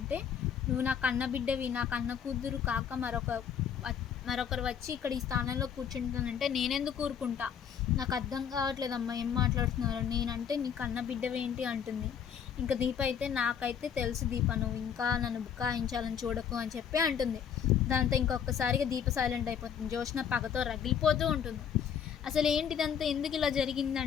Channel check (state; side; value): quieter; right; 8.0 dB